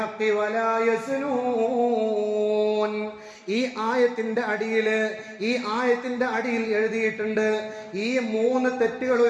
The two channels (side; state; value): both; identical; correlation 1.00